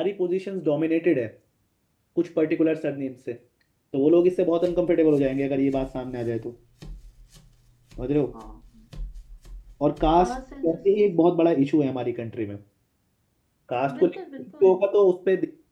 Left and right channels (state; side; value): identical; both; correlation 1.00